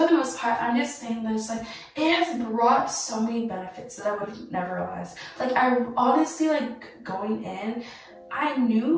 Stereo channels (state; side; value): identical; both; correlation 1.00